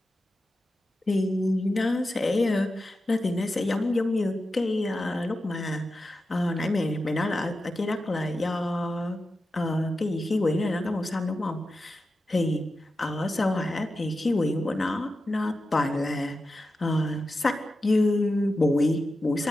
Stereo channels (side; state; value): both; normal; correlation 0.91